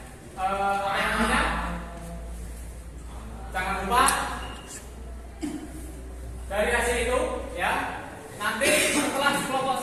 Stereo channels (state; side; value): identical; both; correlation 1.00